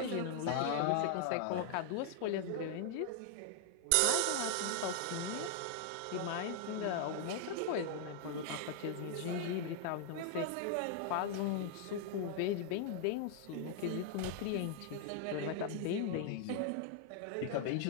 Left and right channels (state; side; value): different; both; correlation -0.01